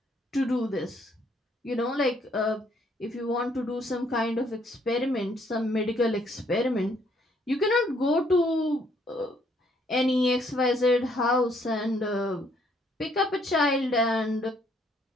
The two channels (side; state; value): both; normal; correlation 0.67